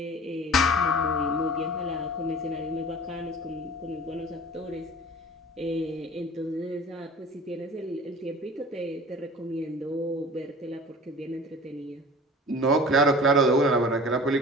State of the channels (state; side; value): normal; both; correlation 0.42